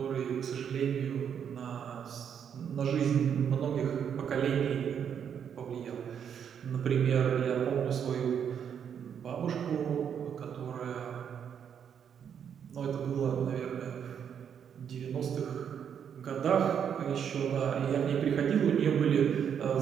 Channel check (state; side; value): quieter; left; 8.1 dB